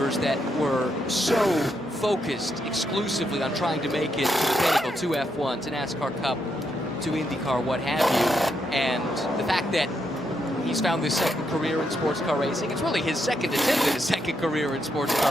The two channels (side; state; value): both; normal; correlation 0.80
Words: that were so focused exclusively on trying to make it to the pinnacle, to F1, to NASCAR Cup, to IndyCar, what have you. And the fact that he's found this second career in sports car racing, it's really his second attempt at a second career in sports